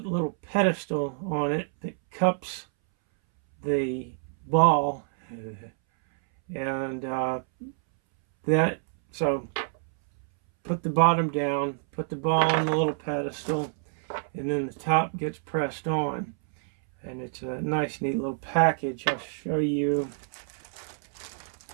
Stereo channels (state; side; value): silent; left; 60 dB below the other